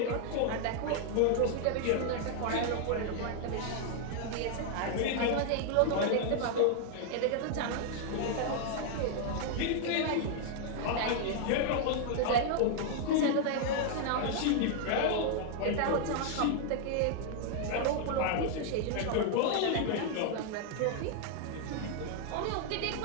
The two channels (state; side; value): different; both; correlation 0.00